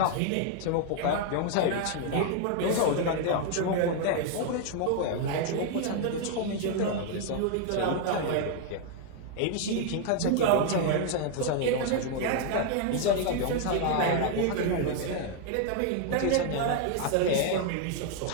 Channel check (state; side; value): different; both; correlation 0.00